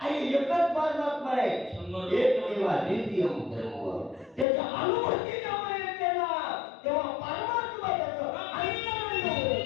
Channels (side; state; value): right; drops out; at 4.5 s